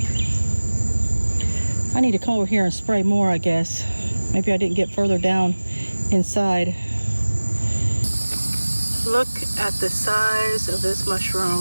I need to come over here and spray more, I guess. Maybe I didn't get further down inside. Look at the size of this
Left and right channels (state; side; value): inverted; both; correlation -1.00